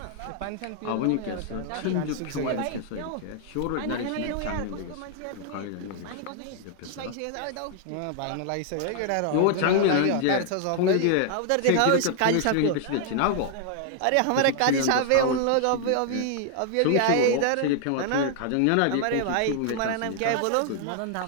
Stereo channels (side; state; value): both; different; correlation 0.00